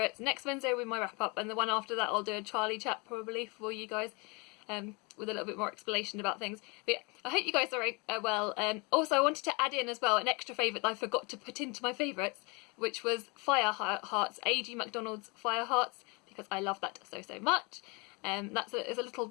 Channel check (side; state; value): right; quieter; 29.8 dB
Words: next Wednesday will be my wrap up, and the one after that I'll do a Charlie chat probably for you guys. With a little bit more explanation about things. But yeah, I hope you guys are well. Also, I wanted to add in as well an extra favourite that I forgot to put into my favourites, which was Fire Hearts, A.G. MacDonald's Fire Hearts, because I love that so much. It's a little